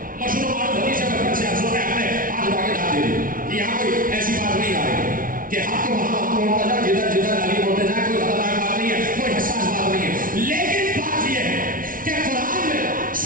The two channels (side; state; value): left; late; 0.40 ms